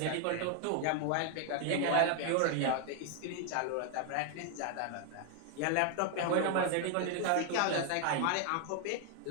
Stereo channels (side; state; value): both; different; correlation 0.00